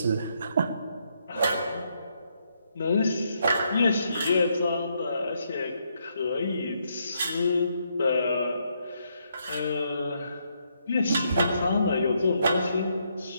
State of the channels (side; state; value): both; inverted; correlation -0.76